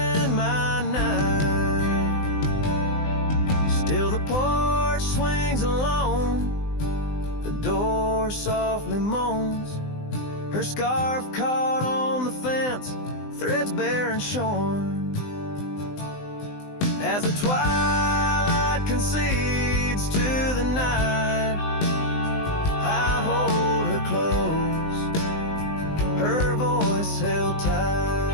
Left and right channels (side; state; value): right; late; 20 ms